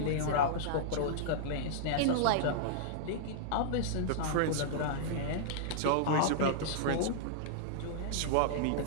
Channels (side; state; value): both; different; correlation -0.02